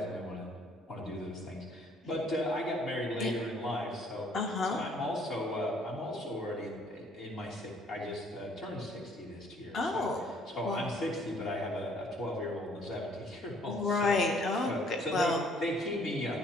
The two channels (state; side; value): normal; both; correlation 0.61